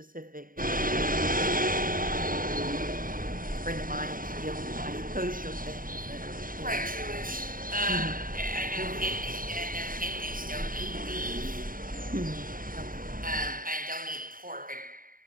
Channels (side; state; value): left; late; 0.41 ms